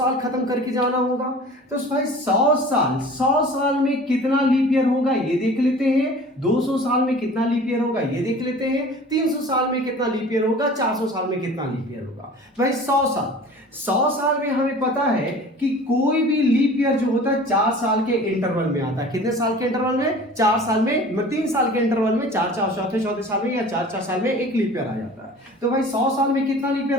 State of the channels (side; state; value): both; normal; correlation 0.43